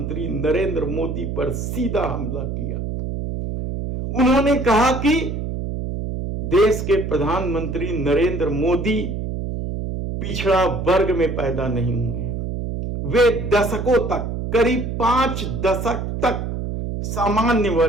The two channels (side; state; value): right; noise; hum, 4 dB below the sound